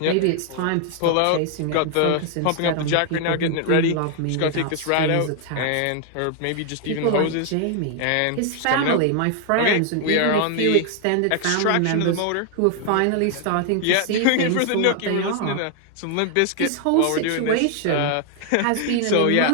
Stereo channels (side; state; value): both; different; correlation 0.00